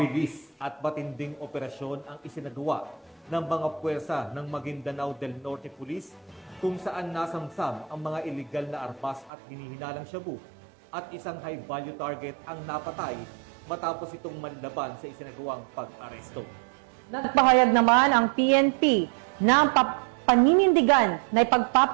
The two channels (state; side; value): drops out; left; at 9.3 s